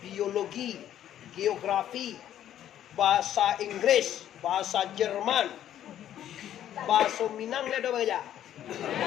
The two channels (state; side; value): quieter; right; 11.2 dB